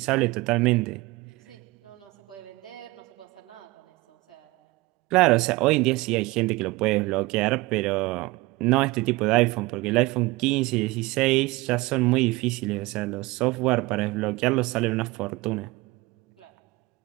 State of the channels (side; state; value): left; quieter; 21.7 dB